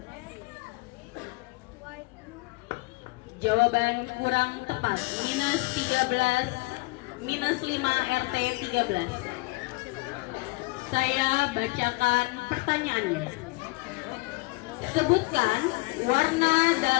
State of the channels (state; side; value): quieter; right; 25.1 dB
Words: Jawaban kurang tepat. Minus 13. Minus 5 RT 13. Saya bacakan pertanyaannya. Sebutkan warna